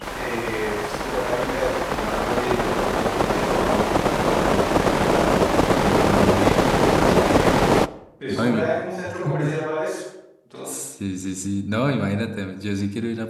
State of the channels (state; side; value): identical; both; correlation 1.00